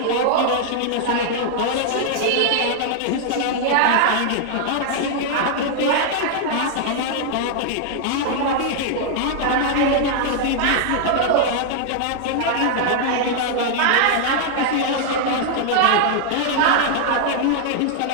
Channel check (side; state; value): both; different; correlation -0.01